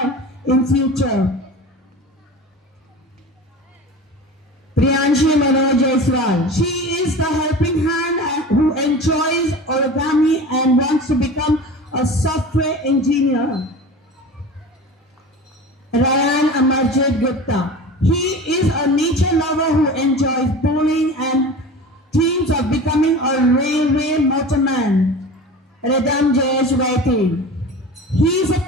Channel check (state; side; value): normal; both; correlation 0.35